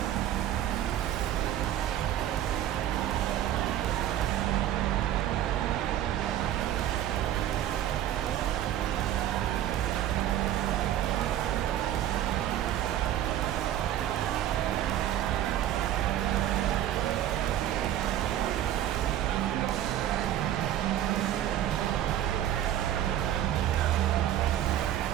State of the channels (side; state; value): left; quieter; 11.8 dB